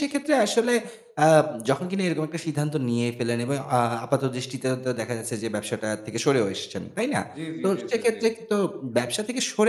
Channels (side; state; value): both; identical; correlation 1.00